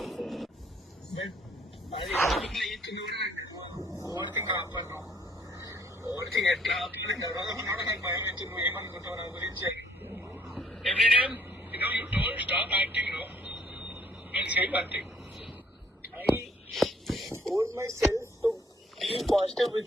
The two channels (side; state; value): both; normal; correlation 0.62